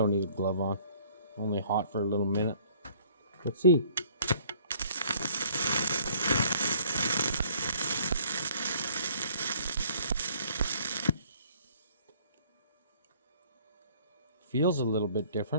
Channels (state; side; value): inverted; both; correlation -0.58